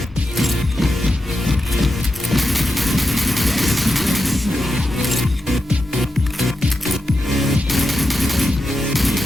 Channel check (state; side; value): normal; both; correlation 0.88